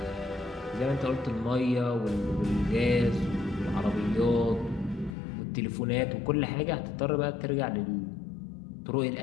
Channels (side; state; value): right; drops out; at 5.2 s